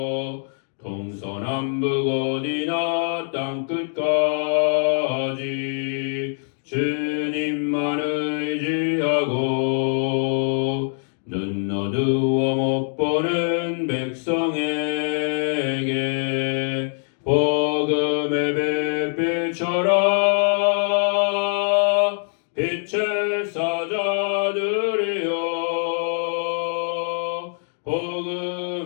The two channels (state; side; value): silent; right; 63 dB below the other